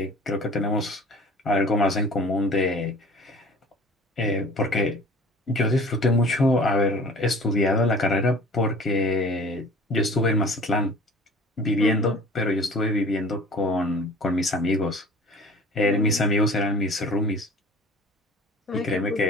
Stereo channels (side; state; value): both; normal; correlation 0.44